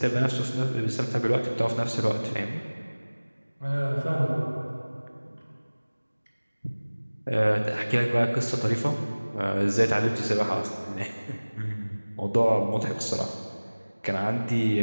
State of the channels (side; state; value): both; inverted; correlation -1.00